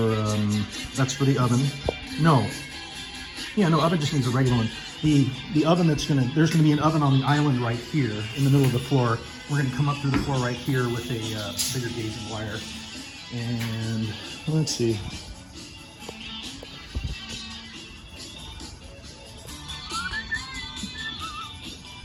that's for the oven. No. Yeah, no, oven just needs a regular one. The oven there's gonna be an oven on the island right here in the middle of the floor. We're gonna come up through the floor right here with a bigger gauge of wire. And let's see.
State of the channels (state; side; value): identical; both; correlation 1.00